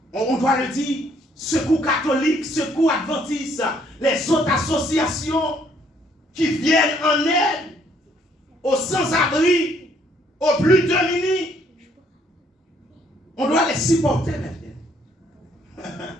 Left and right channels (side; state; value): both; normal; correlation 0.66